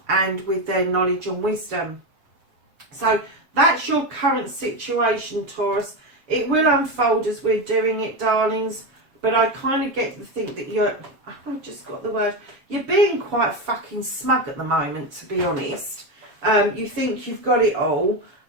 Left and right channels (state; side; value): late; left; 7.0 ms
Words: with their knowledge and wisdom. So that's your current situation, Taurus. It will unfold as we're doing it, darlings, but I kind of get to think that I've just got the word, you're being quite fucking smug at the moment, to be honest. You think you've got it all,